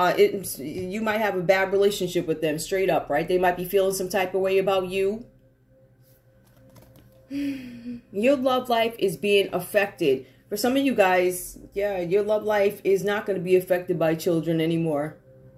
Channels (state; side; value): identical; both; correlation 1.00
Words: might have a bad relationship with them straight up, right? They might be feeling some type of way about you. Your love life is being affected. For some of you guys, yeah, your love life is not going to be affected by children anymore.